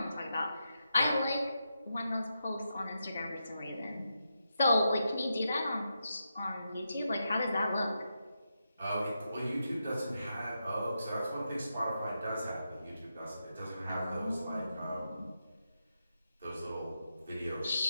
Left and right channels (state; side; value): inverted; both; correlation -0.86